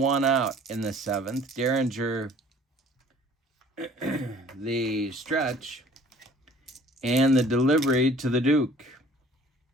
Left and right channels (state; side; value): normal; both; correlation 0.52